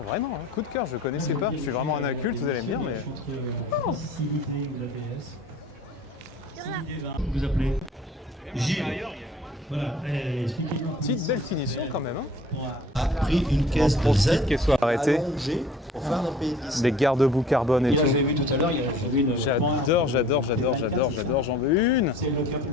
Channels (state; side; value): normal; both; correlation 0.49